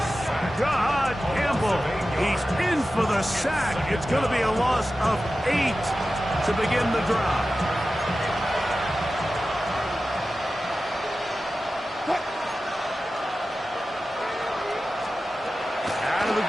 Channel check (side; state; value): both; normal; correlation 0.94